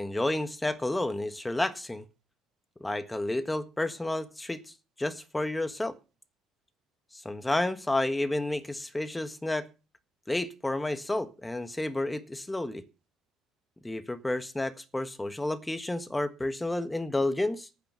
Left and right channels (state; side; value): normal; both; correlation 0.97